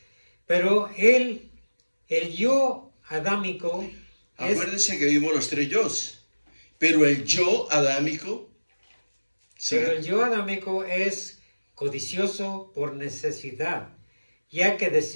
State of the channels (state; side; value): inverted; both; correlation -1.00